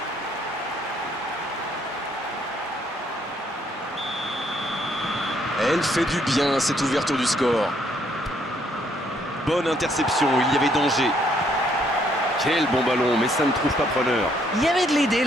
Elle fait du bien, cette ouverture du score. Bonne interception, il y avait danger. Quel bon ballon, mais ça ne trouve pas preneur. Il y avait de l'idée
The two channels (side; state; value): both; normal; correlation 0.69